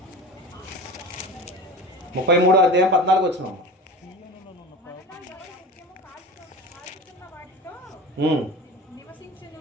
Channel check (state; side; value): normal; both; correlation 0.32